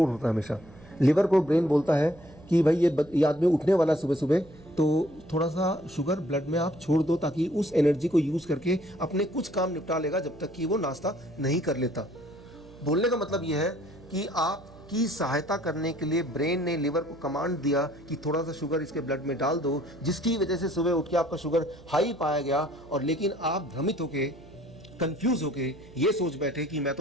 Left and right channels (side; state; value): right; noise; hum, 22 dB below the sound